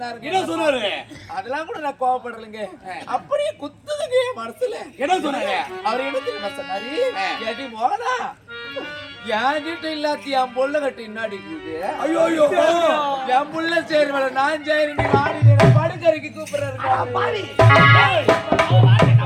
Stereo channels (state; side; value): identical; both; correlation 1.00